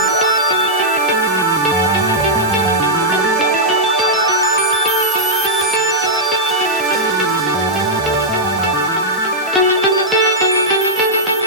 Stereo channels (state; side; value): normal; both; correlation -0.08